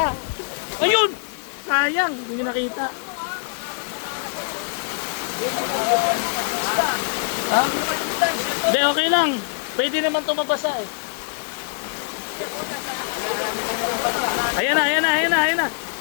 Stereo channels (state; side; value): silent; right; digital silence